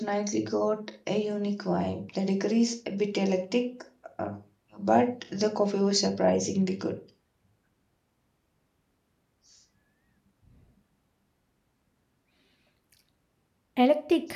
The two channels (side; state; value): both; identical; correlation 1.00